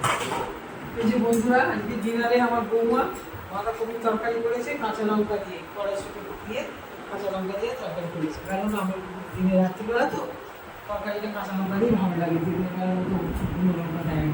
এই যে বন্ধুরা, আজকে ডিনারে আমার বৌমা বাঁধাকপির তরকারি করেছে কাঁচা লঙ্কা দিয়ে, কড়াইশুঁটি দিয়ে কাঁচা লঙ্কা দিয়ে তরকারি করেছে। কারণ আমার দিনে রাত্রিবেলা তো তরকারিটা কাঁচা লঙ্কা দিয়ে ভালো লাগে, দিনের বেলা তো কোনো লঙ্কা দেয়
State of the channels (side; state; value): both; identical; correlation 1.00